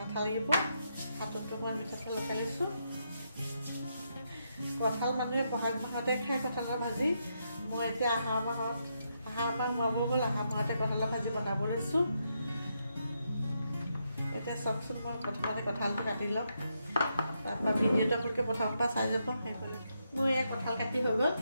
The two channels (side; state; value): both; inverted; correlation -0.81